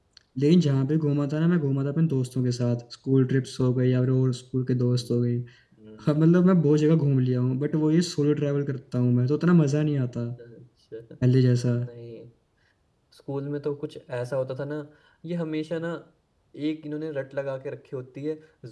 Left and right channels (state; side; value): identical; both; correlation 1.00